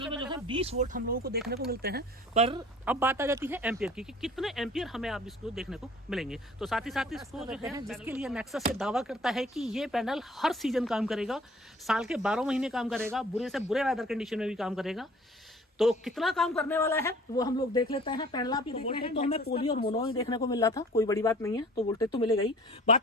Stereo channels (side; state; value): both; normal; correlation 0.50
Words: में जो है 20 वोल्ट हम लोगों को देखने को मिलते हैं। पर अब बात आ जाती है एम्पियर की कि कितने एम्पियर हमें आप इसको देखने को मिलेंगे। तो साथ ही इसको जो है जिसके लिए नेक्सस से दावा करता है कि ये पैनल हर सीजन काम करेगा, साल के 12 महीने काम करेगा, बुरे से बुरे वेदर कंडीशन में भी काम करेगा। तो कितना काम करने वाला है वो हम लोग देख लेते हैं। पैनल आप देख रहे हैं तो हमें पोली और मोनो ही देखने को मिल रहा था, कोई बड़ी बात नहीं है, तो वोल्टेज तो मिलेगा ही।